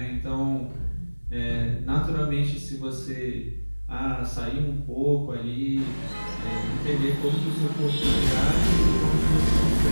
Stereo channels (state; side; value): inverted; both; correlation -1.00